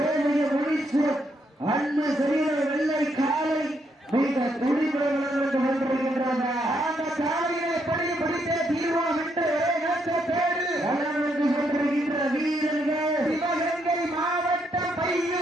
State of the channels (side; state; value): both; normal; correlation 0.76